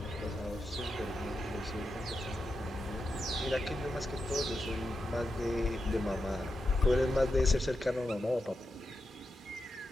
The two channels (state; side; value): normal; both; correlation 0.88